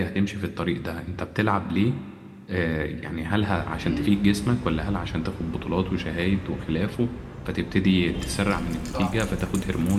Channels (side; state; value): both; identical; correlation 1.00